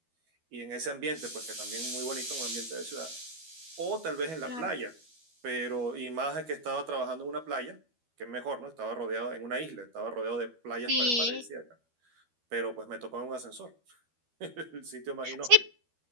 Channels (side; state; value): left; late; 12 ms